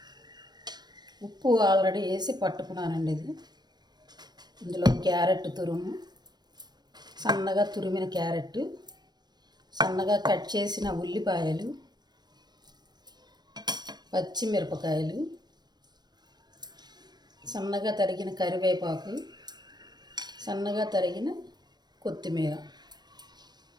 ఉప్పు ఆల్రెడీ వేసి పట్టుకున్నానండి. ఇది ఇందులో క్యారెట్ తురుము, సన్నగా తురిమిన క్యారెట్, సన్నగా కట్ చేసిన ఉల్లిపాయలు, పచ్చిమిరపకాయలు, సన్నగా తరిగిన కరివేపాకు, సన్నగా తరిగిన కొత్తిమీర.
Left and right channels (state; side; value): late; left; 0.20 ms